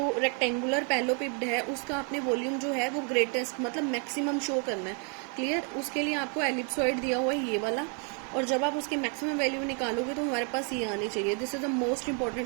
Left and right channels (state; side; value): quieter; left; 38.4 dB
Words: rectangular पैलोपिप्ड है उसका आपने volume जो है वो ग्रेटेस्ट मतलब मैक्सिमम शो करना है. क्लियर. उसके लिए आपको एलिप्सॉइड दिया हुआ है ये वाला, और जब आप उसके मैक्सिमम वैल्यू निकालोगे तो हमारे पास ये आनी चाहिए. This is the most